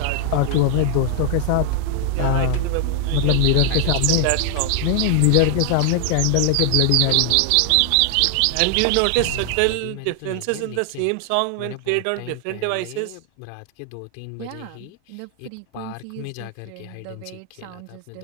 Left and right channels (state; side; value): different; both; correlation 0.00